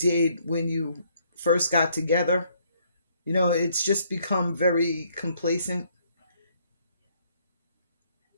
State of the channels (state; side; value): inverted; both; correlation -0.67